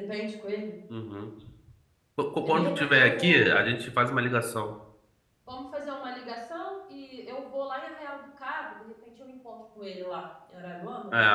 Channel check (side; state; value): both; identical; correlation 1.00